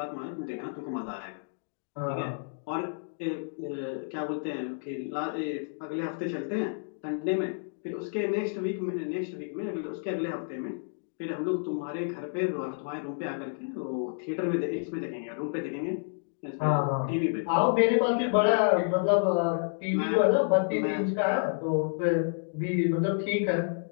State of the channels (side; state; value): right; silent; digital silence